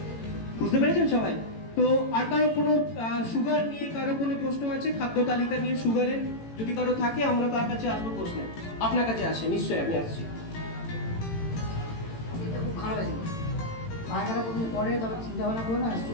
বুঝতে পেরেছেন সবাই? তো আর কারো কোনো সুগার নিয়ে কারো কোনো প্রশ্ন আছে? খাদ্য তালিকা নিয়ে সুগারের যদি কারো থাকে আমরা তার কাছে আসবো প্রশ্ন। আপনার কাছে আসে নিশ্চয়ই, আমি আসছি। এটা খুব খারাপ আছে, পায়খানা প্রথম পরে তবে চিন্তা ভাবনা করো না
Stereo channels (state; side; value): late; right; 18 ms